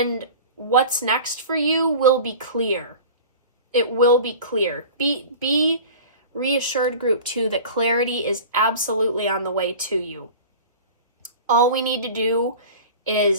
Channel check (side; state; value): both; inverted; correlation -0.37